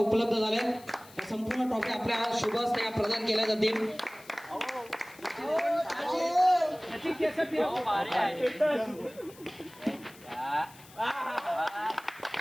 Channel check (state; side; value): noise; left; hiss, 22 dB below the sound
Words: झाल्या. संपूर्ण ट्रॉफी आपल्या शुभ हस्ते प्रदान केल्या जातील.